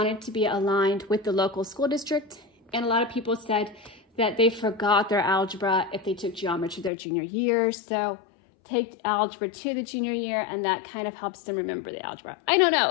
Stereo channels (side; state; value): right; drops out; at 6.9 s